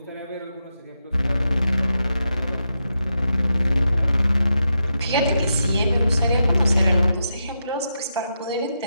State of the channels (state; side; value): inverted; both; correlation -0.85